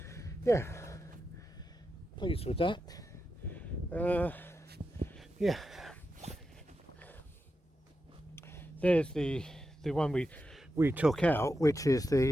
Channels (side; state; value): both; normal; correlation 0.88